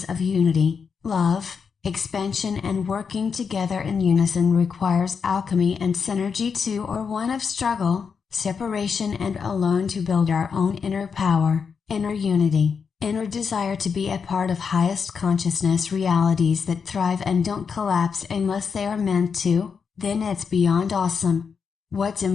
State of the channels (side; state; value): right; quieter; 6.0 dB